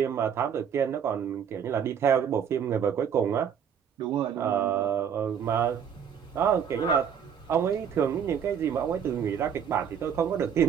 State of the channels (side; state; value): left; quieter; 7.9 dB